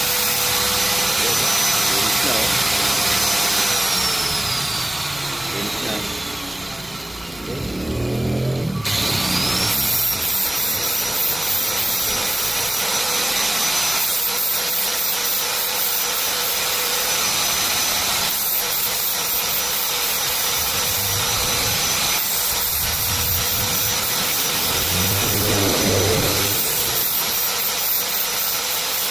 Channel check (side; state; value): left; noise; hum, 24 dB below the sound